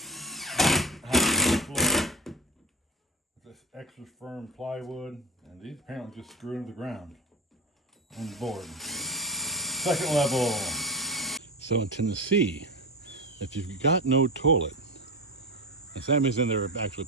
floor. This extra firm plywood, and these apparently just screw into the ground on the board. Second level. So in Tennessee, if you've got no toilet, and Sammy's in there actually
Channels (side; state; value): both; normal; correlation 0.27